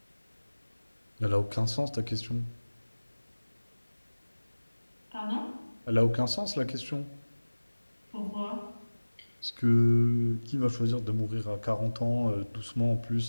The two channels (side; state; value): both; inverted; correlation -1.00